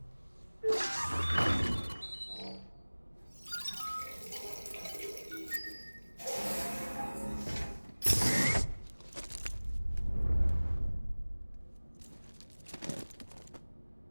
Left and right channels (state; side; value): inverted; both; correlation -1.00